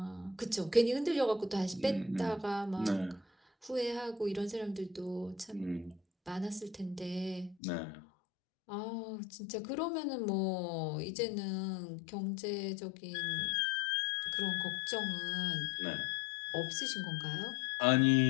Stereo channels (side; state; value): right; drops out; at 7.6 s